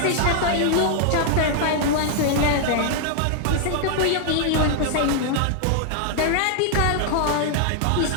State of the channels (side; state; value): both; different; correlation 0.00